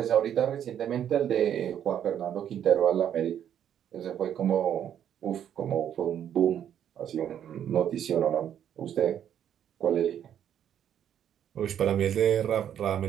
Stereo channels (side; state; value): left; quieter; 9.7 dB